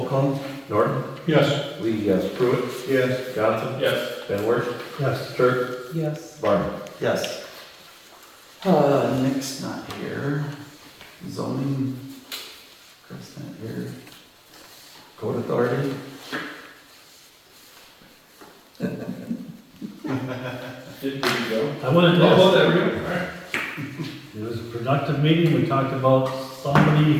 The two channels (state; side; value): identical; both; correlation 1.00